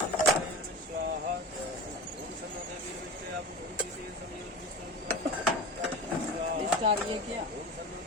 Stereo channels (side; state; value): both; normal; correlation 0.31